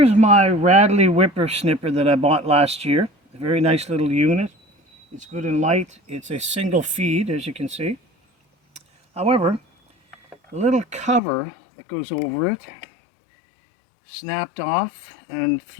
my Radley whippersnipper that I bought last year. A very nice little unit. It's good and light. It's a single feed, as you can see. However, the little cover that goes over it snapped off and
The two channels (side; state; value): right; drops out; at 11.2 s